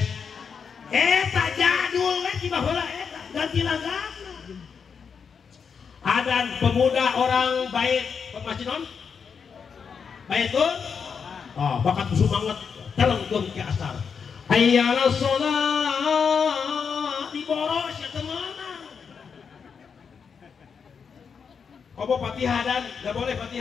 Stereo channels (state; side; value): quieter; right; 6.3 dB